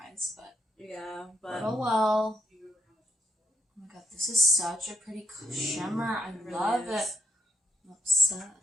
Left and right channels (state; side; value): normal; both; correlation 0.77